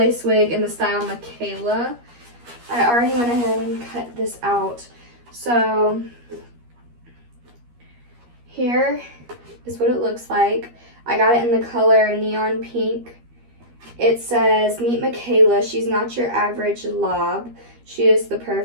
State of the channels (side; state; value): left; late; 13 ms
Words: Wig in the style Makayla. I already went ahead and cut this out. So here is what it looks like. I got it in the color neon pink. It says, "Meet Makayla. She's not your average lob. She is the